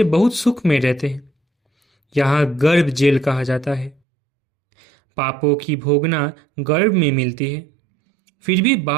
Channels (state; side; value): drops out; left; at 4.0 s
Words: बहुत सुख में रहते हैं। यहाँ गर्भ जेल कहा जाता है। पापों की भोगना गर्भ में मिलती है। फिर भी